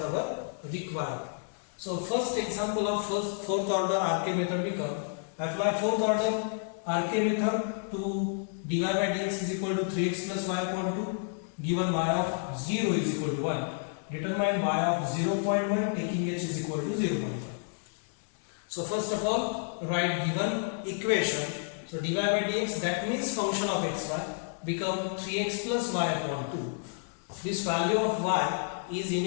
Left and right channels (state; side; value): silent; right; digital silence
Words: requirement. So first example of fourth order RK method become apply fourth order RK method to dy by dx is equal to 3x plus y upon 2 given y of 0 is equal to 1. Determine y of 0.1 taking h is equal to 0.1. So first of all write given equation. So dy by dx, that means function of xy, become 3x plus y upon 2. This value of y is